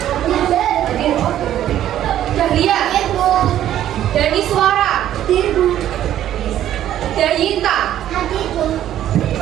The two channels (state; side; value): quieter; left; 11.8 dB